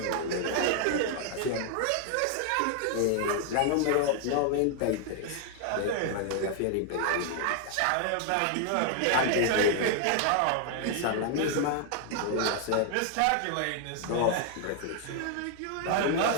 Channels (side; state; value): both; different; correlation 0.00